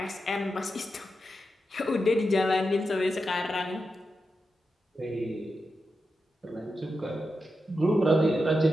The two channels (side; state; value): both; normal; correlation 0.88